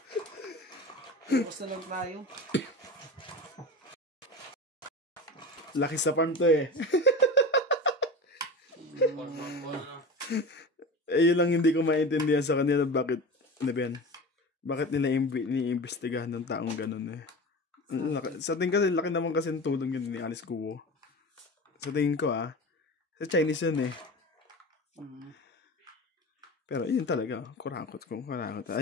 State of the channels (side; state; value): both; normal; correlation 0.30